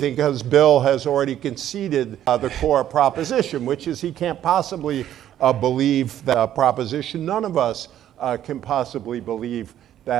because Bill has already conceded the core proposition, which is he can't possibly believe that proposition. None of us can possibly believe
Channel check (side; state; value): left; quieter; 11.4 dB